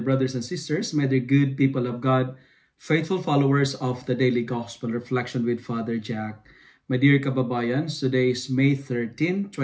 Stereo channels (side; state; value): both; identical; correlation 1.00